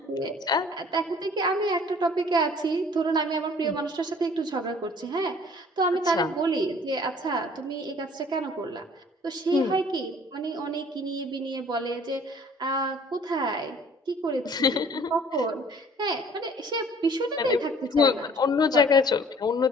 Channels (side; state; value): both; normal; correlation 0.53